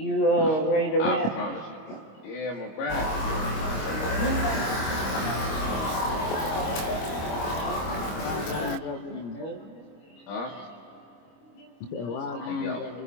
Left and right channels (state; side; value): late; right; 25 ms